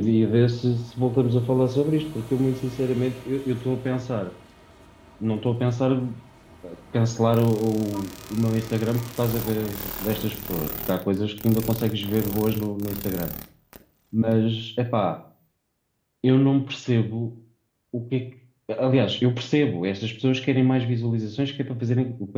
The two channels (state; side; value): identical; both; correlation 1.00